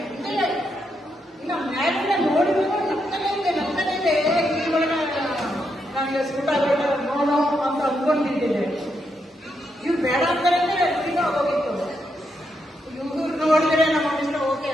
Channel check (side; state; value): both; normal; correlation 0.81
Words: ಇನ್ನು ಮ್ಯಾಲಿನ ನೋಡಿದ್ರು ನಗ್ತಾನೆ ಇದೆ. ಈ ಒಳಗೆ ನನಗೆ ಸೂಟ್ ಆಗೋಲ್ಲ ನೋಡೋ ಅಂತ ಅಂದ್ಕೊಂಡಿದ್ದೆ. ಇವ್ರು ಬೇಡ ಅಂತಾರೆ ಈಗ ಹೋಗಿತ್ತು. ಇವ್ರು ನೋಡಿದ್ರೆ ನಮ್ಮ ಇಷ್ಟ ಓಕೆ